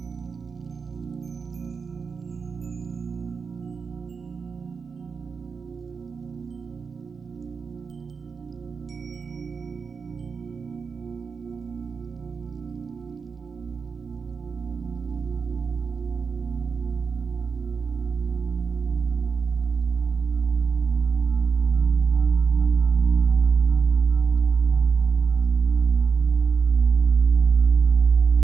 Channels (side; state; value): left; quieter; 5.5 dB